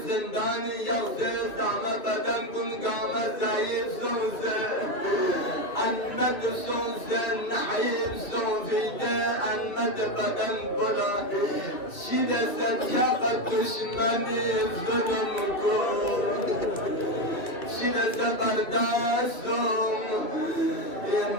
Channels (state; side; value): late; right; 2.6 ms